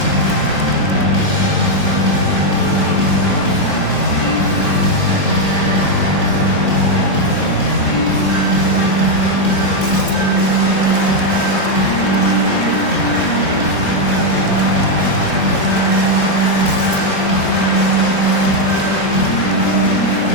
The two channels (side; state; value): right; late; 3.7 ms